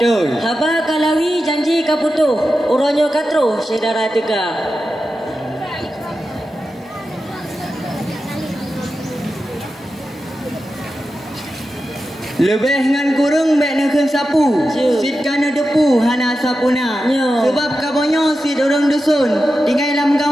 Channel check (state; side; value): normal; both; correlation 0.91